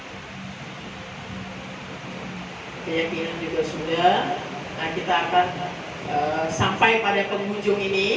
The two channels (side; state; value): both; identical; correlation 1.00